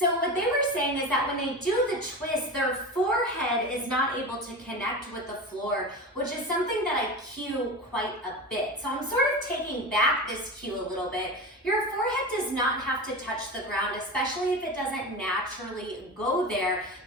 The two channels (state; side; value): normal; both; correlation 0.27